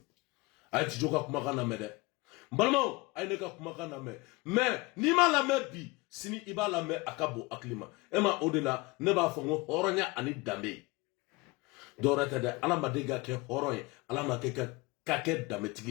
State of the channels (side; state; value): right; quieter; 23.7 dB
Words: a ye Tijo ka kumakan lamɛn dɛ balimaw a ye ne ka kumakan lamɛn mais n'i m'a lamɛn bi sini i b'a lamɛn a ka bon hakili ma e ma o de la ne b'a fɔ n ko hɔrɔnya ani danbe dɔwɛrɛ tɛ dɛ Ala ma deli ka kɛ hɔrɔn ye Ala ma kɛ ka kɛ danbetigi